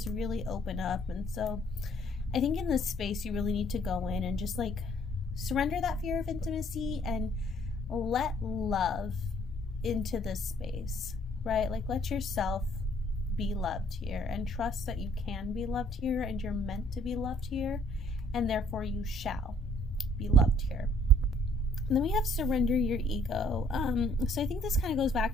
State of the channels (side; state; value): both; normal; correlation 0.62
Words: really open up. And so I think in this space you really need to go in and just like surrender that fear of intimacy and let love into this space, right? Like, let yourself be loved here, and trust that you can be loved here, and you're meant to be loved here, and therefore you shall be loved here. And then we have surrender your ego. So I think this kind of goes back